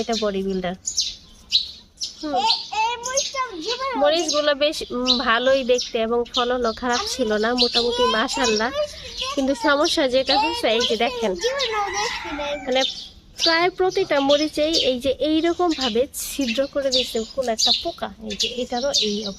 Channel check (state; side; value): identical; both; correlation 1.00